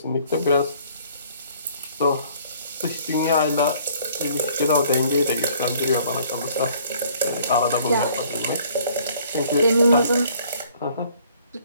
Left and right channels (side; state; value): both; inverted; correlation -0.58